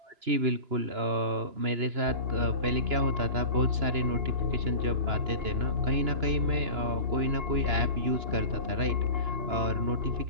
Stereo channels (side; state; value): left; late; 2.9 ms